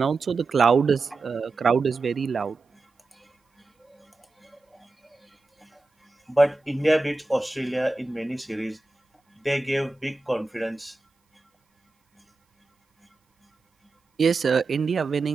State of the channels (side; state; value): left; quieter; 3.5 dB